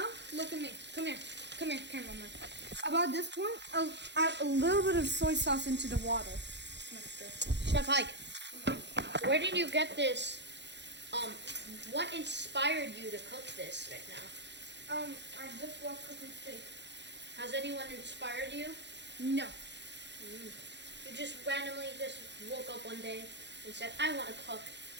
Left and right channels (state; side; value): late; left; 0.51 ms